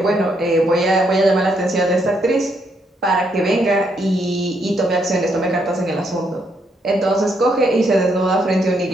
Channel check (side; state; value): both; normal; correlation 0.75